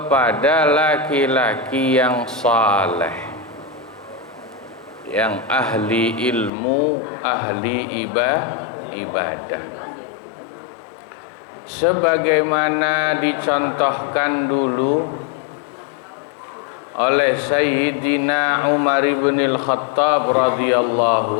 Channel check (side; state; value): right; drops out; at 6.5 s